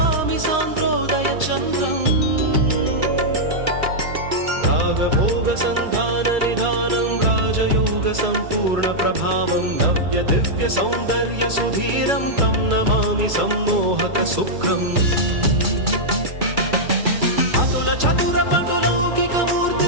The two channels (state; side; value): late; left; 2.3 ms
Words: सान्द्रोदय चन्द्रम् रागभोग सन्धान निधानं राजयोग सम्पूर्ण प्रभावं नव्य दिव्य सौन्दर्य सुधीरं तं नमामि सम्मोहक शुक्रम् अतुल चतुर पटुलौकिक